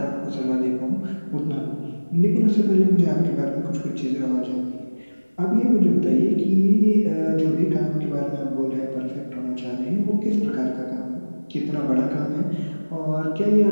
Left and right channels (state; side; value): inverted; both; correlation -1.00